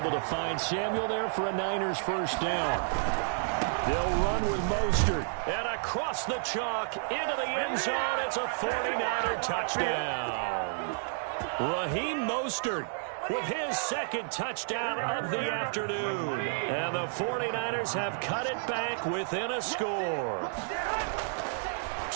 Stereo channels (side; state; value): left; silent; digital silence